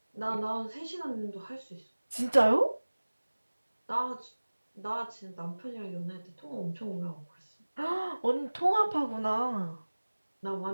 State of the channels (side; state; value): both; inverted; correlation -1.00